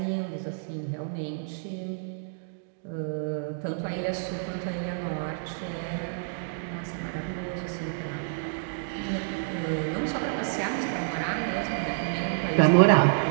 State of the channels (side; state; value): left; silent; digital silence